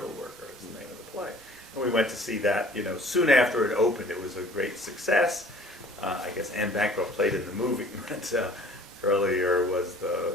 Worker is the name of the play. And we went to see that, soon after it opened. It was a great success. I guess Anne Bancroft played in the movie, but earlier was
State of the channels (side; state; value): both; normal; correlation 0.52